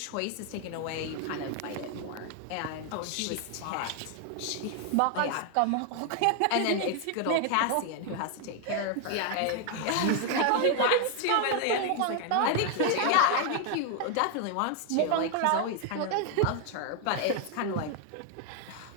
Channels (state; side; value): different; both; correlation 0.00